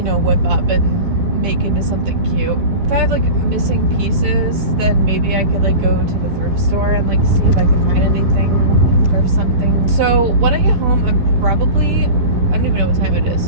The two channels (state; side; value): late; left; 10 ms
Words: know, whip up and make into something cute. If I have like missing pieces, then maybe I could like go to the thrift store and like see if I can find anything, thrift something. So when I get home, I'm probably, I don't even know what time it